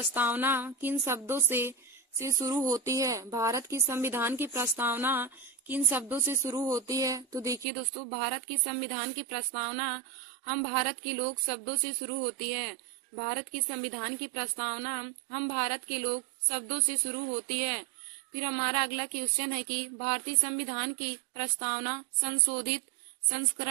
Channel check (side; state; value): left; drops out; at 7.7 s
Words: किन शब्दों से शुरू होती है? भारत की संविधान की प्रस्तावना किन शब्दों से शुरू होती है? तो देखिए दोस्तों, भारत की संविधान की प्रस्तावना हम भारत के लोग शब्दों से शुरू होती है। भारत की संविधान की प्रस्तावना हम भारत के लोग शब्दों से शुरू होती है। फिर हमारा अगला क्वेश्चन है कि भारतीय संविधान की प्रस्तावना संशोधित